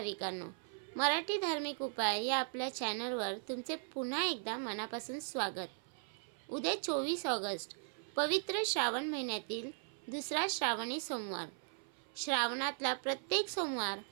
मराठी धार्मिक उपाय या आपल्या चॅनलवर तुमचे पुन्हा एकदा मनापासून स्वागत. उद्या 24 ऑगस्ट पवित्र श्रावण महिन्यातील दुसरा श्रावणी सोमवार. श्रावणातला प्रत्येक सोमवार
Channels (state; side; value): silent; left; 52 dB below the other